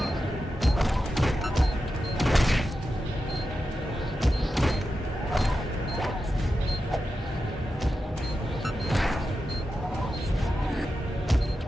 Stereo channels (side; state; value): both; normal; correlation 0.90